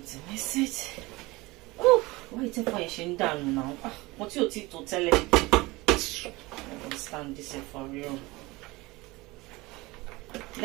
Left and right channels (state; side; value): quieter; left; 22.0 dB